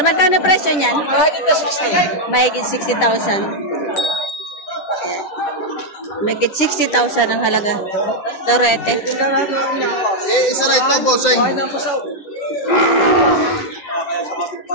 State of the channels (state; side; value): late; right; 9.9 ms